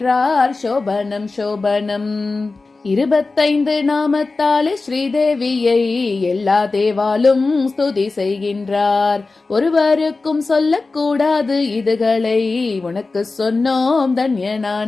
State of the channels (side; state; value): right; quieter; 3.7 dB